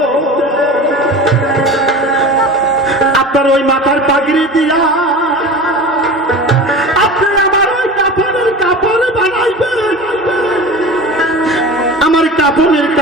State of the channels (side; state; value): both; normal; correlation 0.34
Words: আপনার ওই মাথার পাগড়ি দিয়া আপনি আমার ওই কাপড়ের কাপড় বানাইবেন। আমার কাপড়ের